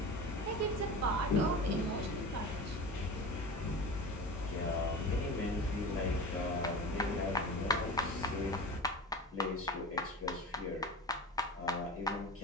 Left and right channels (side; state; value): both; normal; correlation 0.31